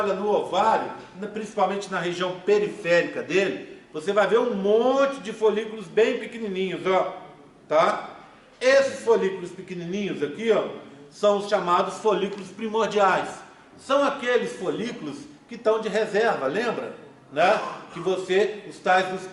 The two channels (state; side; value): identical; both; correlation 1.00